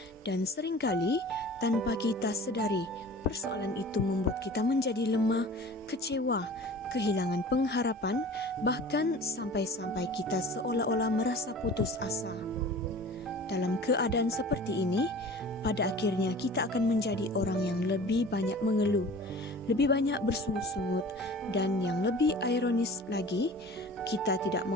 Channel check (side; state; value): both; normal; correlation 0.42